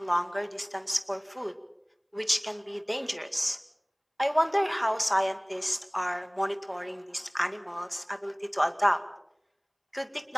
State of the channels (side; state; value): both; identical; correlation 1.00